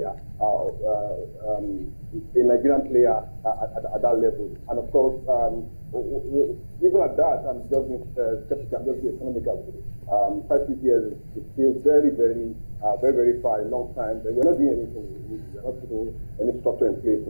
a Nigerian player at that level. And of course, even at that, I'm just being skeptical. I'm just being economical. 5-6 years is still very far, a long time. But we're not doing anything. We're not putting any structure in place to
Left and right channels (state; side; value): inverted; both; correlation -1.00